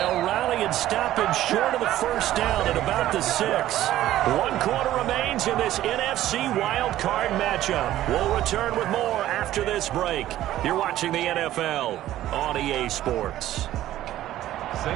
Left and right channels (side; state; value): left; quieter; 13.7 dB